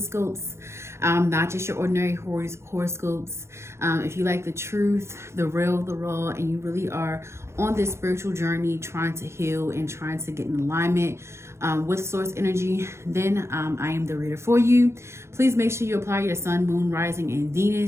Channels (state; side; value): late; left; 0.13 ms